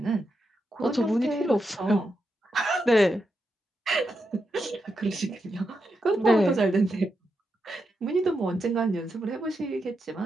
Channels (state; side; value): normal; both; correlation 0.85